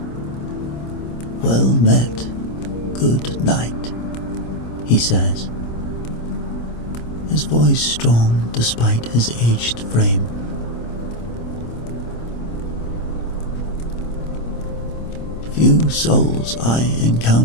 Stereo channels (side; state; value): right; late; 26 ms